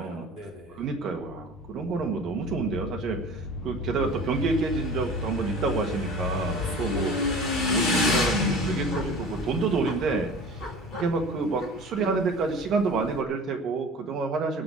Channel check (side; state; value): both; normal; correlation 0.40